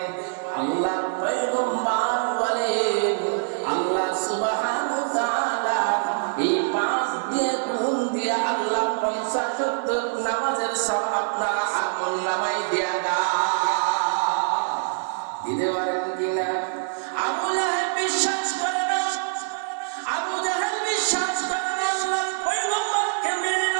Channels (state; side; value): silent; left; digital silence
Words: আল্লাহর পয়গম্বর বলেন আল্লাহ সুবহানাহু ওয়া তাআলা এই 5 দিয়ে গুণ দিয়ে আল্লাহ 50 ওয়াক্ত নামাজের সব আপনারা আমল নামায় দিয়া দিতে পারেন কিনা? আবু লাহাব বিশ্বাস করে না, আবু জাহেল বিশ্বাস করে না আল্লাহর পয়গম্বরকে